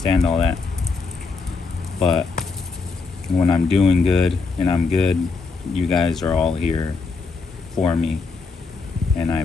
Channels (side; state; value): right; quieter; 4.3 dB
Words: all that. But when I'm doing good and I'm good, you guys are all here for me, and I